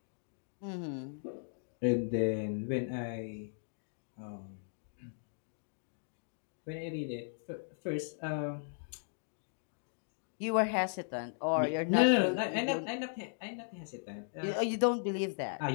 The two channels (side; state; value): right; silent; digital silence